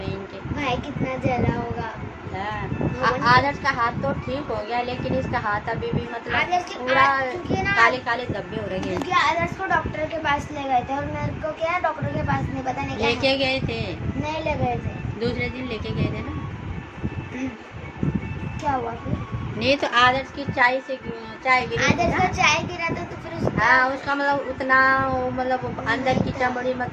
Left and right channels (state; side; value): identical; both; correlation 1.00